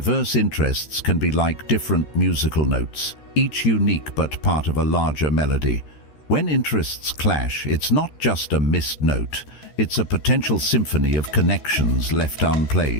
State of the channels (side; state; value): right; late; 13 ms